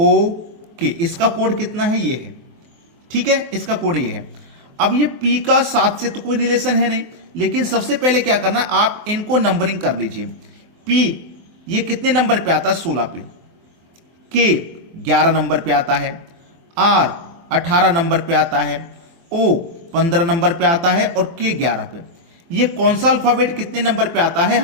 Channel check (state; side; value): late; left; 23 ms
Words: के, इसका कोड कितना है? ये है। ठीक है, इसका कोड ये है। अब ये पी का 7 से तो कोई रिलेशन है नहीं, लेकिन सबसे पहले क्या करना, आप इनको नंबरिंग कर लीजिए। पी ये कितने नंबर पे आता है? 16 पे। के 11 नंबर पे आता है। आर 18 नंबर पे आता है। ओ 15 नंबर पे आता है और के 11 पे। ये कौन सा अल्फाबेट कितने नंबर पे आता है